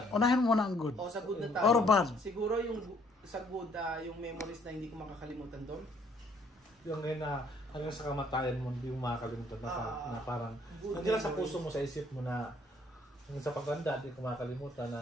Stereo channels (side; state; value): both; normal; correlation 0.64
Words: Unahin mo muna ang good. Sa good na tayo. Or bad? Siguro sa good, yung memories na hindi ko makakalimutan doon. Yung ngayon na hanggang sa kamatayan mo, hindi mo makakalimutan na parang nandiyan sa puso mo, sa isip mo na sa pagkanda, hindi ko makakalimutan na...